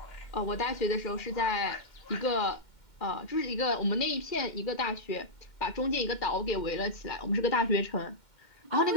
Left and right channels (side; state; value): right; late; 2.1 ms